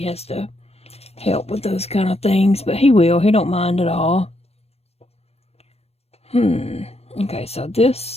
to help with those kind of things, but he will. He don't mind at all. Okay, so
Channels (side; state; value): right; late; 0.30 ms